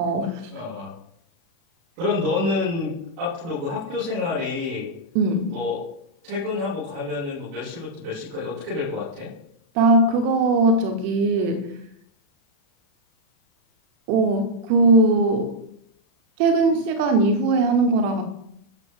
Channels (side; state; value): left; late; 36 ms